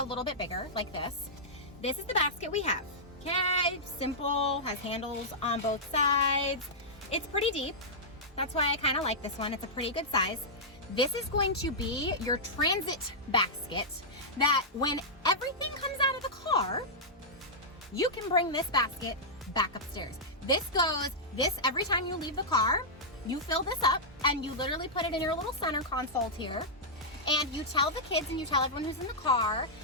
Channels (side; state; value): both; normal; correlation -0.10